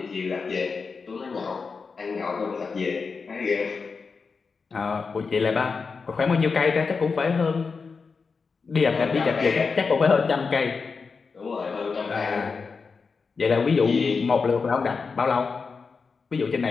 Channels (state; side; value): quieter; right; 4.9 dB